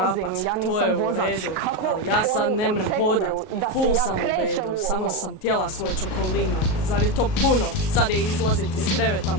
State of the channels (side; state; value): right; late; 38 ms